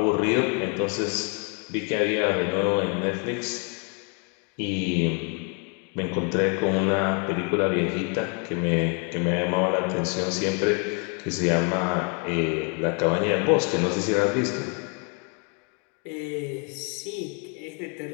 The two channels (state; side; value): quieter; right; 35.6 dB